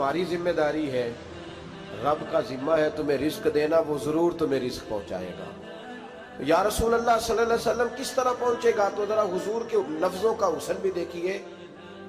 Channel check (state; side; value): identical; both; correlation 1.00